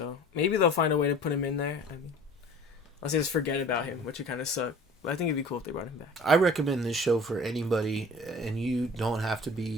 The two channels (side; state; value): both; normal; correlation 0.45